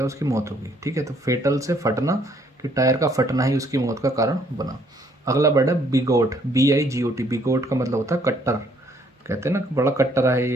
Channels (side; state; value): both; normal; correlation 0.66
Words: उसकी मौत होगी। ठीक है, तो फेटल से फटना, कि टायर का फटना ही उसकी मौत का कारण बना। अगला वर्ड है बिगोट, BIGOT, बिगोट का मतलब होता है कट्टर। कहते हैं ना बड़ा कट्टर है